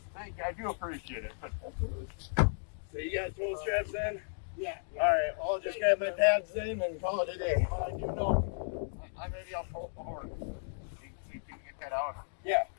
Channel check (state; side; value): silent; right; digital silence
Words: Thank you. I do appreciate it. So you got tow straps in? Yeah. All right. I'll just grab my pads in and call it a day. I do know. Maybe I'll pull up the horn. You can get that out? Yeah.